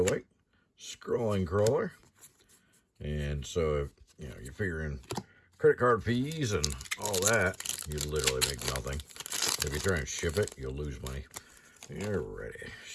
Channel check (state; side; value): identical; both; correlation 1.00